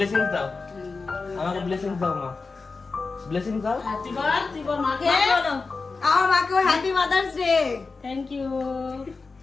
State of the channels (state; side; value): quieter; right; 4.2 dB